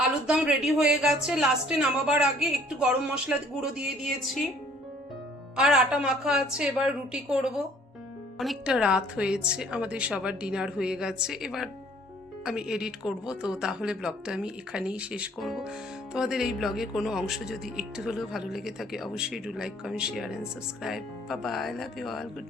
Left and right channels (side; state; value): both; normal; correlation 0.57